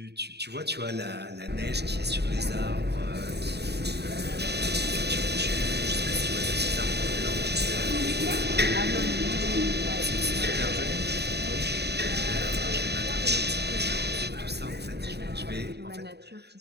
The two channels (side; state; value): left; late; 0.48 ms